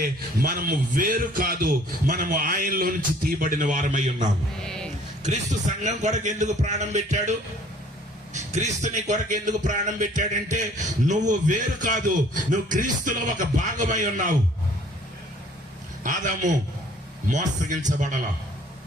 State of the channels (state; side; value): normal; both; correlation 0.56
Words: మనము వేరు కాదు, మనము ఆయనలో నుంచి తీయబడిన వారమై ఉన్నాము. క్రీస్తు సంఘం కొరకు ఎందుకు ప్రాణం పెట్టాడు? క్రీస్తుని కొరకు ఎందుకు ప్రాణం పెట్టాడంటే నువ్వు వేరు కాదు, నువ్వు క్రీస్తులో ఒక భాగమై ఉన్నావు. ఆదాము